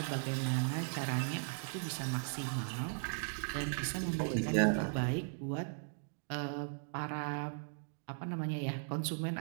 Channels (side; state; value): left; silent; digital silence